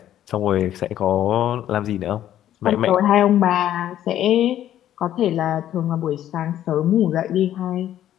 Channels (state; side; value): quieter; right; 11.7 dB